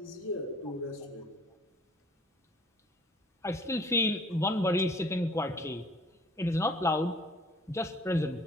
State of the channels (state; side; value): normal; both; correlation 0.54